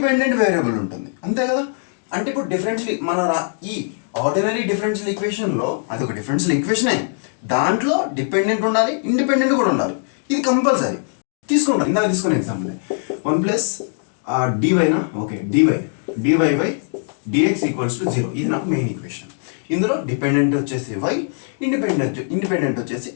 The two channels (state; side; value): silent; right; 65 dB below the other